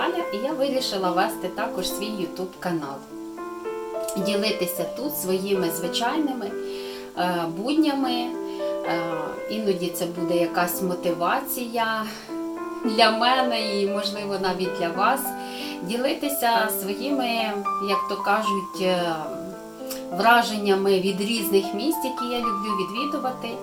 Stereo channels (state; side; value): identical; both; correlation 1.00